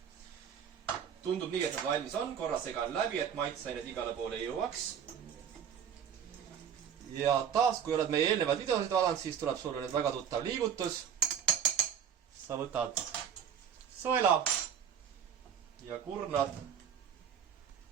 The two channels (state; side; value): quieter; left; 8.3 dB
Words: Tundub nii, et nad valmis on. Korra segan läbi, et maitseained igale poole jõuaks. Ja taas, kui oled meie eelnevad videosid vaadanud, siis tuleb sulle nüüd väga tuttav liigutus. Sa võtad sõela ja kurnad